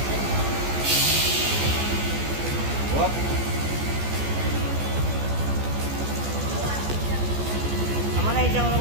Whoop. Amo na yung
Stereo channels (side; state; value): left; late; 14 ms